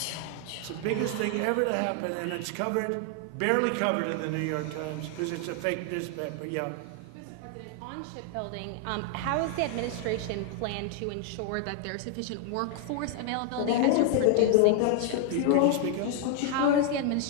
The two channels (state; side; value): different; both; correlation 0.00